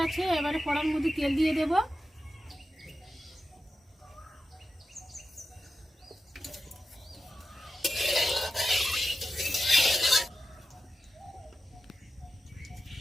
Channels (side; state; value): both; normal; correlation 0.91